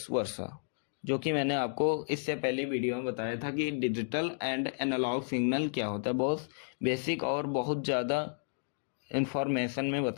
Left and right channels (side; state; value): right; silent; digital silence